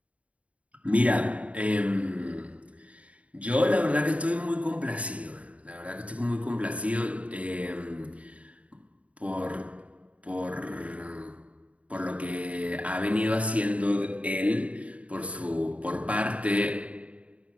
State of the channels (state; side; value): late; left; 0.066 ms